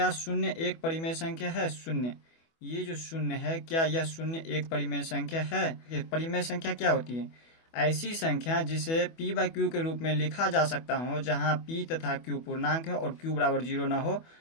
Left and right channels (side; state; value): right; late; 24 ms